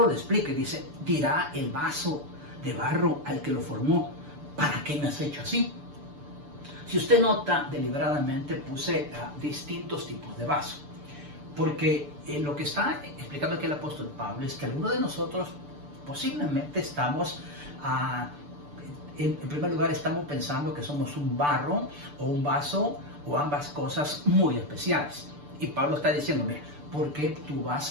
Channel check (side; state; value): left; late; 6.8 ms